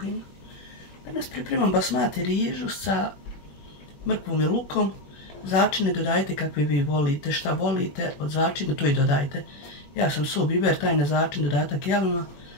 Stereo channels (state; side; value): late; right; 21 ms